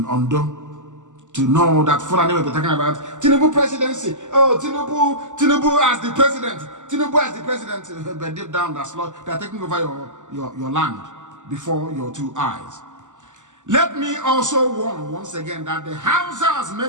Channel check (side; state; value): left; late; 0.86 ms